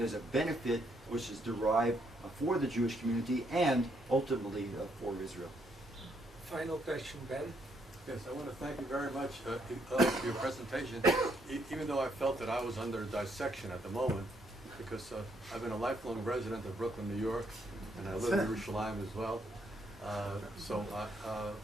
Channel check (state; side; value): normal; both; correlation 0.73